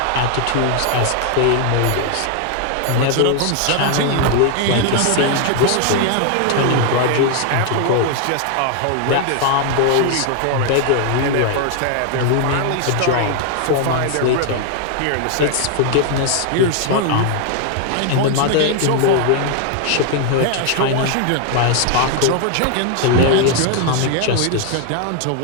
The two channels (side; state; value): both; different; correlation 0.00